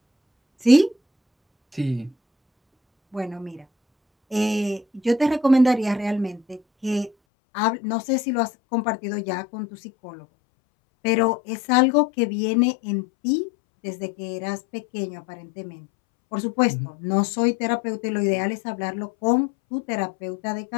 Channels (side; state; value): right; drops out; at 7.1 s